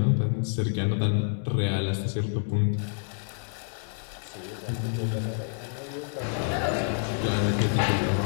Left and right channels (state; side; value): silent; right; 59 dB below the other